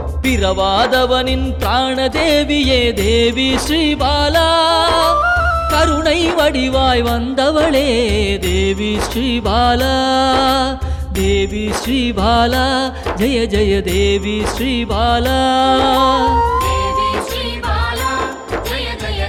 பிறவாதவனின் பிராண தேவியே தேவி ஸ்ரீபாலா. கருணை வடிவாய் வந்தவளே தேவி ஸ்ரீபாலா. தேவி ஸ்ரீபாலா ஜெய ஜெய தேவி ஸ்ரீபாலா. தேவி ஸ்ரீபாலா ஜெய ஜெய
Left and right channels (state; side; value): identical; both; correlation 1.00